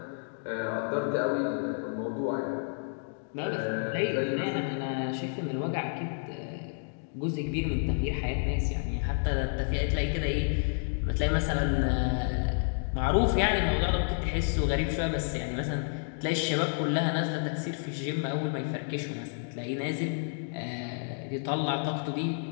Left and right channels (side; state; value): right; silent; 58 dB below the other